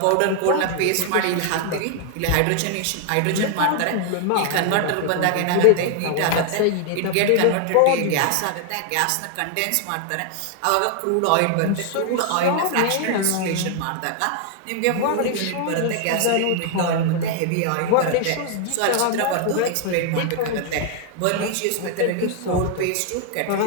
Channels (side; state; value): both; different; correlation 0.00